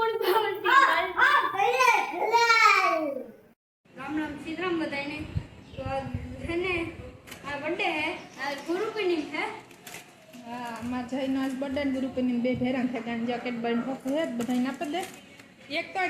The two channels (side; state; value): both; identical; correlation 1.00